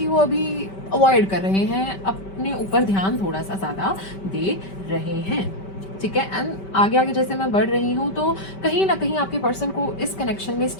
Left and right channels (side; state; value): right; late; 5.2 ms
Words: वो अभी अवॉइड कर रहे हैं, अपने ऊपर ध्यान थोड़ा सा ज़्यादा दे रहे हैं, ठीक है। एंड आगे आगे जैसे मैं बढ़ रही हूँ तो कहीं ना कहीं आपके पर्सन को इस कनेक्शन में